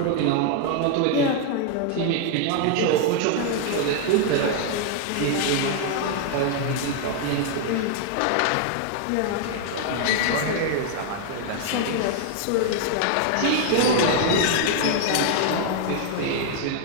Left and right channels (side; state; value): both; different; correlation 0.00